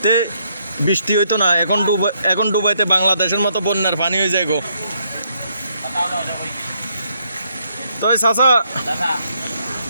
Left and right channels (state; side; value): inverted; both; correlation -0.73